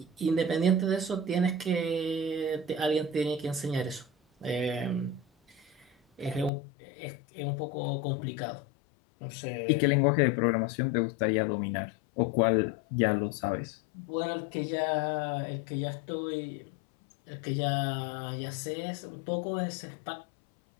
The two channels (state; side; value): drops out; right; at 6.5 s